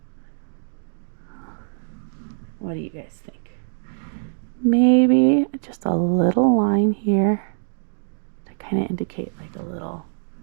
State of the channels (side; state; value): left; silent; digital silence